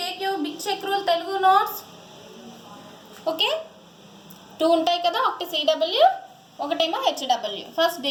take you big check rule Telugu notes. Okay 2 ఉంటాయి కదా, ఒకటి సిడబ్ల్యూ ఒకటేమో హెచ్డబ్ల్యూ. ఫస్ట్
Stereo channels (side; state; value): both; identical; correlation 1.00